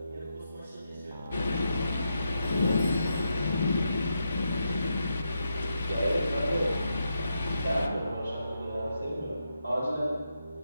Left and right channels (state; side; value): inverted; both; correlation -0.84